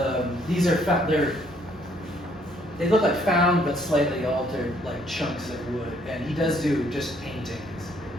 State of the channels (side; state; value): both; normal; correlation 0.66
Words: these are they look like found but slightly altered, like chunks of wood. And he does do just paintings.